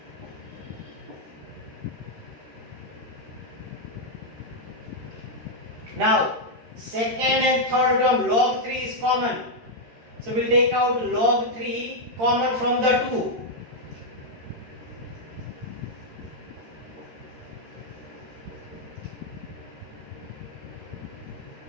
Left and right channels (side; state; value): left; late; 13 ms